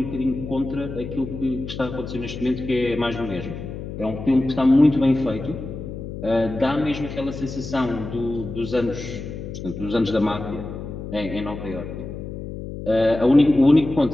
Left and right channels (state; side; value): noise; left; hum, 9 dB below the sound